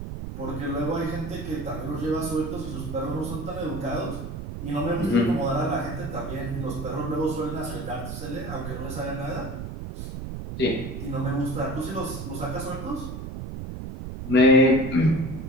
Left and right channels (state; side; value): noise; right; rumble, 7 dB below the sound